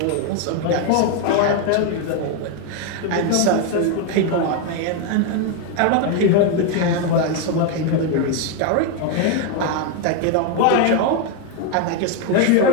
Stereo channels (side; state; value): both; different; correlation 0.01